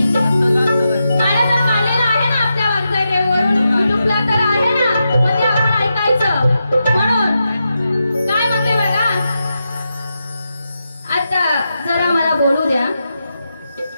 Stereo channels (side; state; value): both; inverted; correlation -0.87